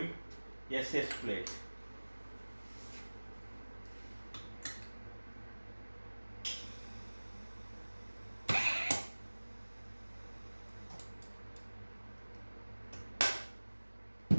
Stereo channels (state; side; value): inverted; both; correlation -1.00